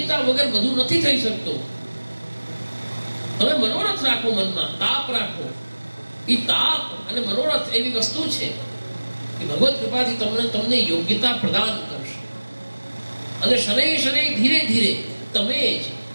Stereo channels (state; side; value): inverted; both; correlation -1.00